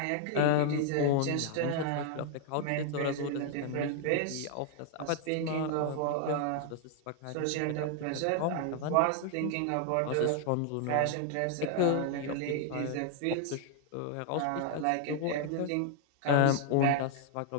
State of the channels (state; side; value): different; both; correlation 0.00